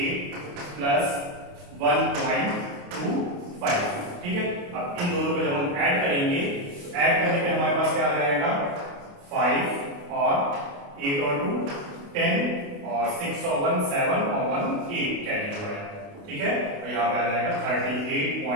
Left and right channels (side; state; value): left; late; 28 ms